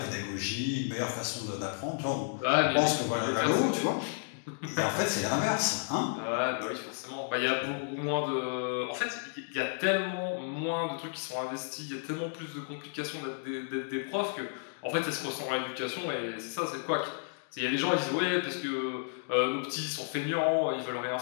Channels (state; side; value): silent; right; digital silence